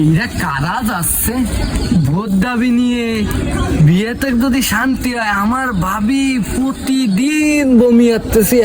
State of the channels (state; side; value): identical; both; correlation 1.00